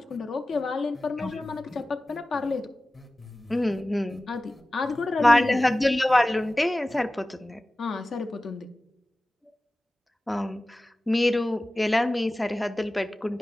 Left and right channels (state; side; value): normal; both; correlation 0.96